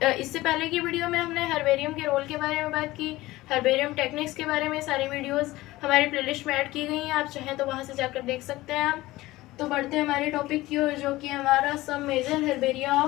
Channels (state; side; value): quieter; right; 18.2 dB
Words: इससे पहले की वीडियो में हमने हर्बेरियम के रोल के बारे में बात की, हर्बेरियम टेक्निक्स के बारे में सारी वीडियोस हमारी प्लेलिस्ट में ऐड की गई हैं। आप चाहें तो वहाँ से जाकर देख सकते हैं। तो बढ़ते हैं हमारे टॉपिक की ओर, जो कि हमारा some major herbaria